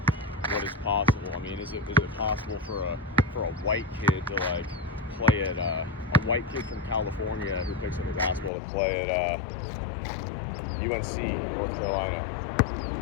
what is possible. I mean, is it possible for a white kid to like play at a white kid from California who picks up a basketball to play at UNC, North Carolina?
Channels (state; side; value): drops out; right; at 8.5 s